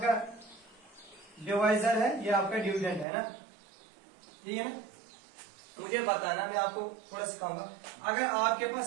डिवाइजर है, ये आपका डिविडेंड है ना, ठीक है ना? मुझे बताना, मैं आपको थोड़ा सिखाऊंगा। अगर आपके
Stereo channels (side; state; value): left; drops out; at 3.1 s